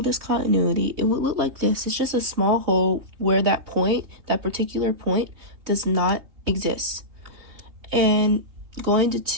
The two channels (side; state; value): left; late; 3.6 ms